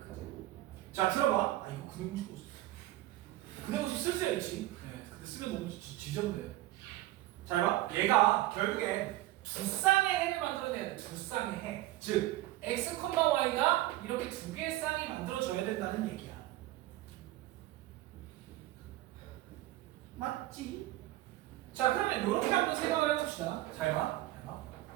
자, 들어봐. 이거 근해공식 없어. 근해공식 쓸 수야 있지. 네, 근데 쓰면 너무 지저분해. 잘 봐. 얘가 결국에 두 쌍의 해를 만들어내야 돼. 두 쌍의 해. 즉, x, y가 이렇게 두 개의 쌍이 만들어져야 된다는 얘기야. 맞지? 자, 그러면 이렇게 한번 생각을 해봅시다. 잘 봐.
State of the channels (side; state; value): left; quieter; 16.3 dB